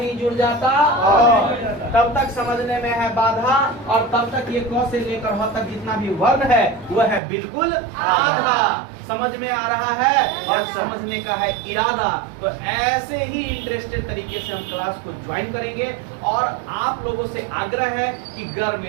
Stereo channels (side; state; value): left; drops out; at 7.2 s